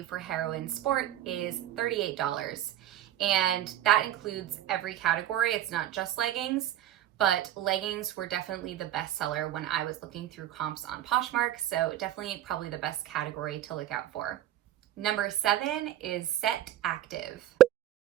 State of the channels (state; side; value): quieter; left; 12.3 dB